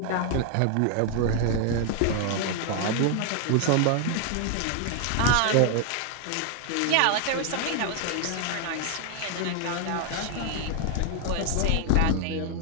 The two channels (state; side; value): different; both; correlation 0.00